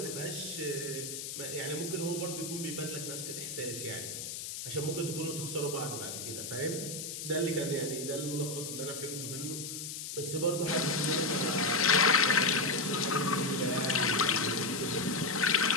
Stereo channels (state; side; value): noise; left; hiss, 7 dB below the sound